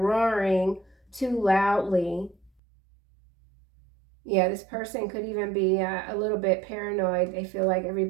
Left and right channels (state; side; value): drops out; left; at 2.5 s